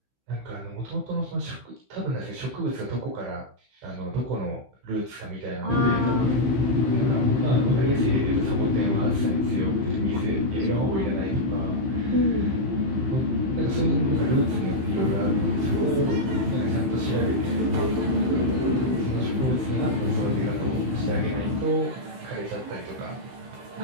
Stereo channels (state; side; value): late; left; 16 ms